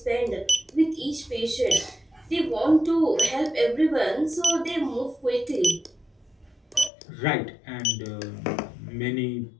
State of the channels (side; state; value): right; drops out; at 6.9 s